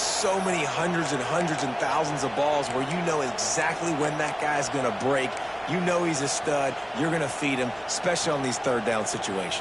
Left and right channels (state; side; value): identical; both; correlation 1.00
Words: many hundreds and thousands of balls where you know exactly when that guy's going to break. You know he's a stud. You're going to feed him, especially on these 3rd down